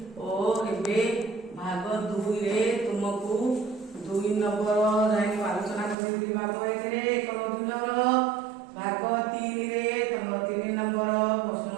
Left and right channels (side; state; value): left; drops out; at 6.0 s